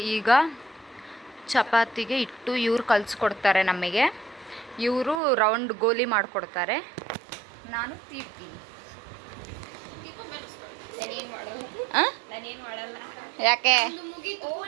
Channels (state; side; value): drops out; left; at 5.2 s